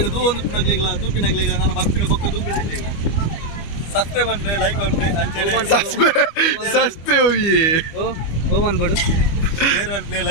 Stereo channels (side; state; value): right; late; 25 ms